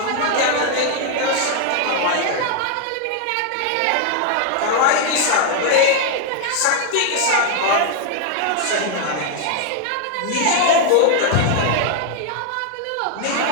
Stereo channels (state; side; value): different; both; correlation 0.00